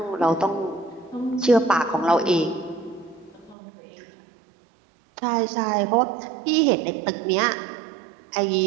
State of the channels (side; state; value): left; drops out; at 3.6 s